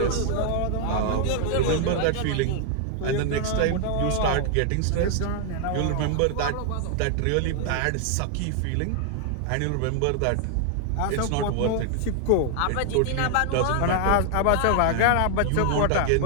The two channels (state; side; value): different; both; correlation 0.00